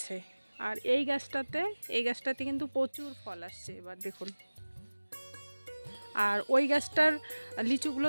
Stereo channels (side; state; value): both; inverted; correlation -1.00